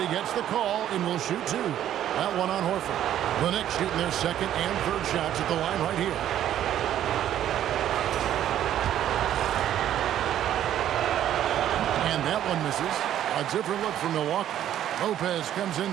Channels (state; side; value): quieter; left; 11.3 dB